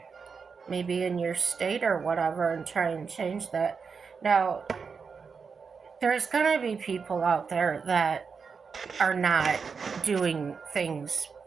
maybe in your state or whatever, and try and change that. Now, there's going to be people out there that are not doing things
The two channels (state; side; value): quieter; left; 5.5 dB